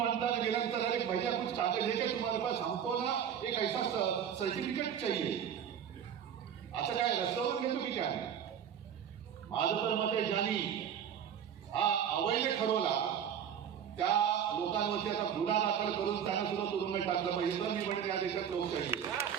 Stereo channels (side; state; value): left; quieter; 8.6 dB